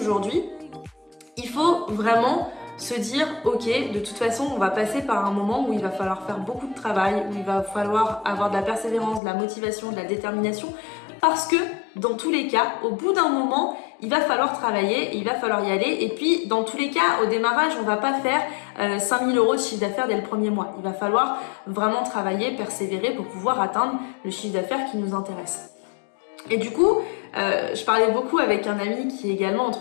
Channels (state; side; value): drops out; right; at 9.2 s